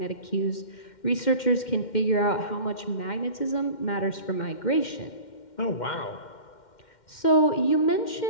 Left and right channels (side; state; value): right; late; 2.1 ms